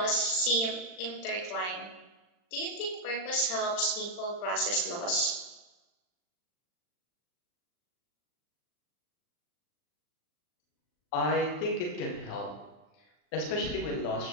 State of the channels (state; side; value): late; right; 39 ms